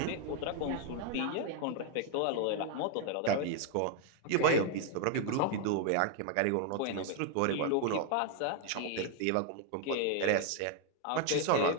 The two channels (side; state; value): both; different; correlation 0.00